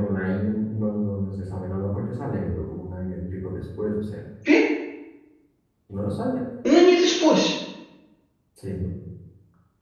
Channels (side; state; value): both; identical; correlation 1.00